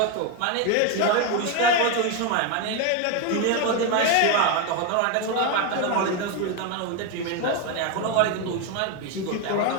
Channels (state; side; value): different; both; correlation 0.02